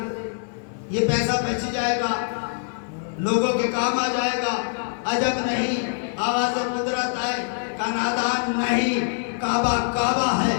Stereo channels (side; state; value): right; silent; 57 dB below the other